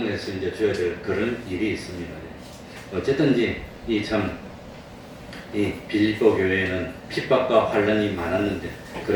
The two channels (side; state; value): both; identical; correlation 1.00